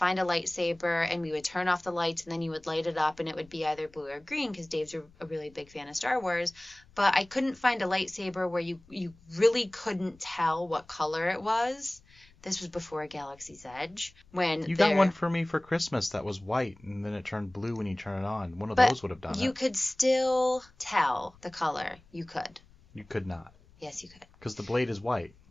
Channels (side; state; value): left; noise; rumble, 27 dB below the sound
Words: a lightsaber and we would turn off the lights and then you would light it up and it would be either blue or green because Dave's a really big fan of Star Wars. But I couldn't find a lightsaber where you really couldn't tell what color it was. This was before Galaxy's Edge. You got one for me for Christmas that was white and then it turned blue when you turn it on. One of those would have done it. You could still tell the color. You could. You could not. Yes, you could. Because the blade is white.